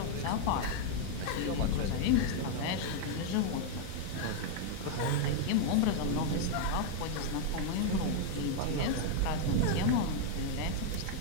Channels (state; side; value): different; both; correlation 0.00